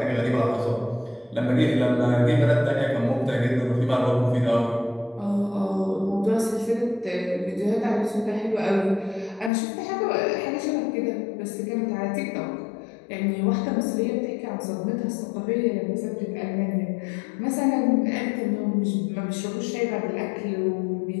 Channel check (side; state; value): right; drops out; at 9.5 s